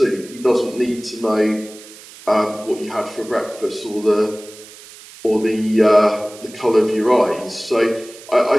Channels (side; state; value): right; noise; hiss, 19 dB below the sound